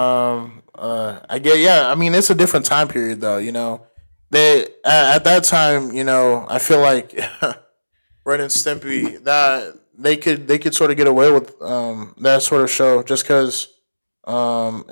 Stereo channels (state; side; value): inverted; both; correlation -1.00